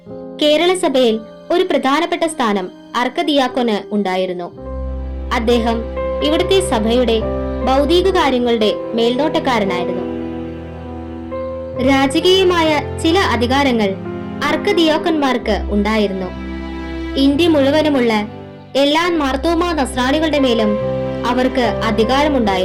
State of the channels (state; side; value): identical; both; correlation 1.00